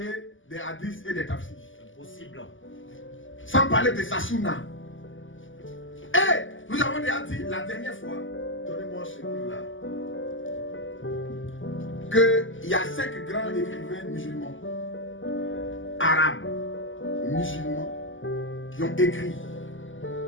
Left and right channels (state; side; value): late; right; 0.57 ms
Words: des hadiths et des tafsirs. Impossible. Sans parler de sa sunna. Et nous avons déjà dit la dernière fois, donnez-moi ce livre-là, qu'il y a 5 grands écrivains musulmans, arabes, musulmans, qui ont écrit,